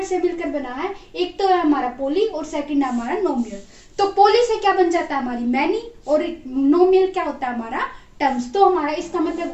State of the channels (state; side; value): identical; both; correlation 1.00